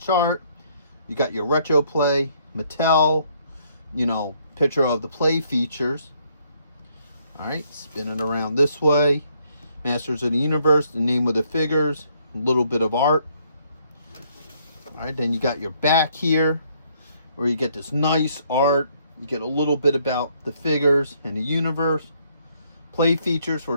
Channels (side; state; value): both; inverted; correlation -0.68